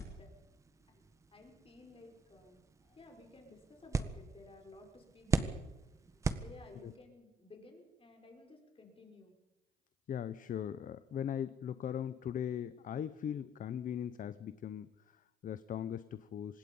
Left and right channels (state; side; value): normal; both; correlation 0.65